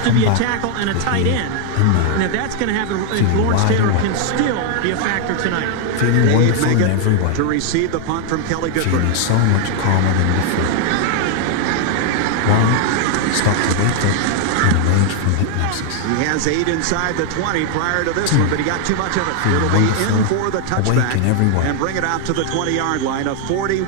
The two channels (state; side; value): different; both; correlation 0.00